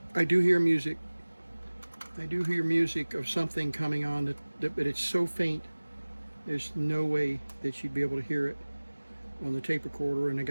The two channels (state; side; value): inverted; both; correlation -1.00